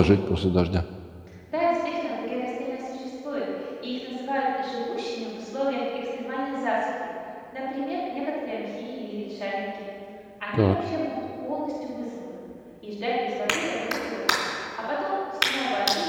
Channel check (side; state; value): both; identical; correlation 1.00